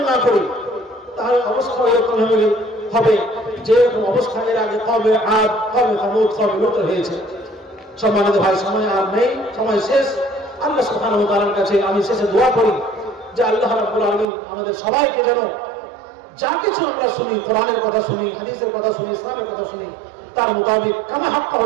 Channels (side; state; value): left; drops out; at 14.2 s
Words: না করি, তাহলে অবস্থা এরকম হবে যে এরকম অবস্থা এর আগে কওমে আদ, কওমে সামূদ, কওমে লূত হয়েছে। সম্মানিত ভাই, সময় আর নেই, সময় শেষ। আল্লাহ সুবহানাহু ওয়া তাআলার কাছে আমি শেষে দোয়া করি যে আল্লাহ রাব্বুল আলামিন আমাদের সবাইকে যেন যা কিছু আমরা শুনি, কোরআনের কথা শুনি, হাদিসের কথা শুনি, ইসলামের কথা শুনি, তার মোতাবেক কামা হাক্কা